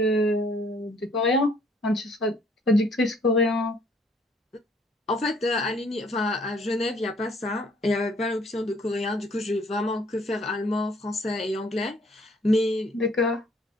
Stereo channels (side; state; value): both; normal; correlation 0.62